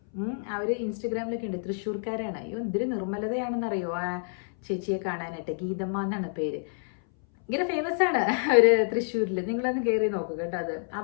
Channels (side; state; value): right; silent; 59 dB below the other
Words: അവർ ഇൻസ്റ്റഗ്രാമിലൊക്കെ ഉണ്ട്. തൃശ്ശൂർക്കാരാണ്. അയ്യോ എന്തൊരു നിർമ്മലതയാണെന്നറിയോ ആ ചേച്ചിയെ കാണാനായിട്ട്. ഗീതമ്മ എന്നാണ് പേര്. ഇങ്ങനെ ഫേമസ് ആണ് അവര് തൃശ്ശൂരിൽ. നിങ്ങളൊന്ന് കയറി നോക്കുക കേട്ടോ. അത്